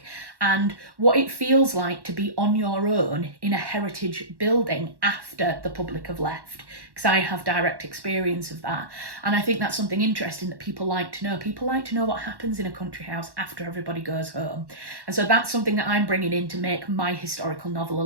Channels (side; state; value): left; late; 1.1 ms